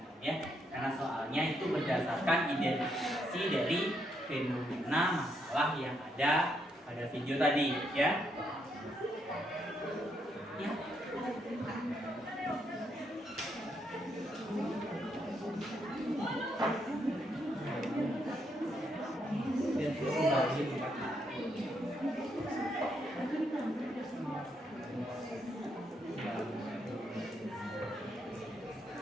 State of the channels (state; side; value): normal; both; correlation 0.77